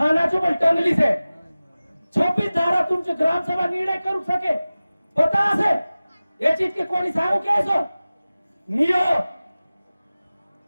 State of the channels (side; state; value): both; inverted; correlation -0.97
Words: पण टंगली से 26 धारा तुमचे ग्राम सभा निर्णय करू सके पता असे ये चीज के कोणी सांगू कैसो नियो